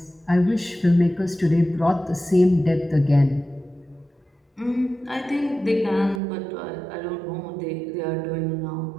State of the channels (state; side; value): drops out; left; at 6.2 s